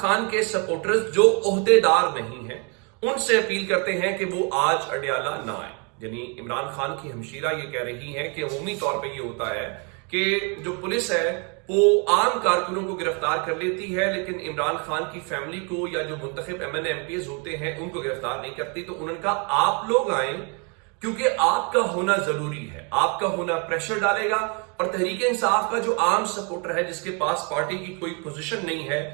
के सपोर्टर्स जो ओहदेदार नहीं हैं उनसे अपील करते हैं कि वो आज अडियाला ना आए। यानी इमरान खान की हमशीरा ये कह रही है कि अमूमी तौर पे ये होता है कि जो पुलिस है वो आम कारकुनों को गिरफ्तार कर लेती है, लेकिन इमरान खान की फैमिली को या जो मुंतखब एमएनए एमपीएस होते हैं उनको गिरफ्तार नहीं करती। तो उन्होंने कहा आप लोग आए क्योंकि आपका होना जरूरी है, आपका होना प्रेशर डालेगा। और तहरीक इंसाफ का जो आम सपोर्टर है, जिसके पास पार्टी की कोई पोजीशन नहीं है,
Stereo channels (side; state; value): left; quieter; 34.7 dB